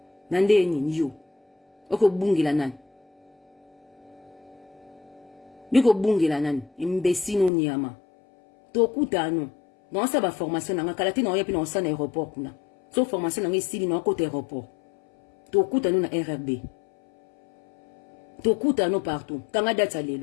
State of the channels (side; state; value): right; drops out; at 7.5 s